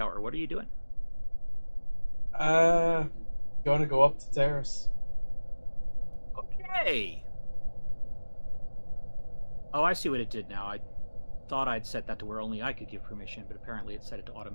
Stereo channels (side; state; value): both; inverted; correlation -1.00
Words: What are you doing? Going to go up to T.R.A.S.H. Okay. Oh, I see what it did now. I thought I'd set that to where only I could give permission, but apparently it set it to